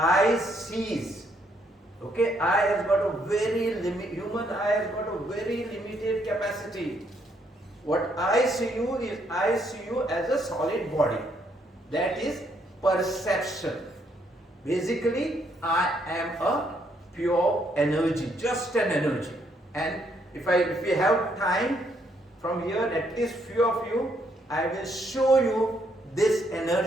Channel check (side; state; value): both; normal; correlation 0.72